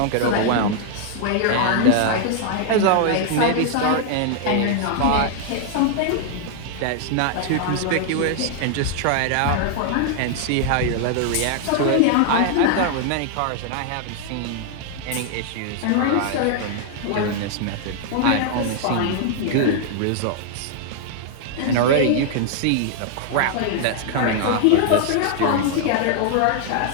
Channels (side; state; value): both; different; correlation -0.01